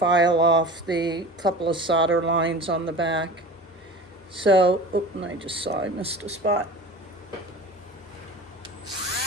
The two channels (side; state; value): both; normal; correlation 0.37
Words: off the couple of solder lines on the back. So, and I just saw I missed a spot.